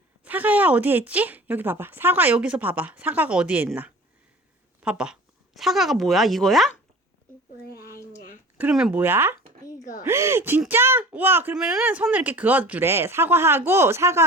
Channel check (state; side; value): normal; both; correlation 0.41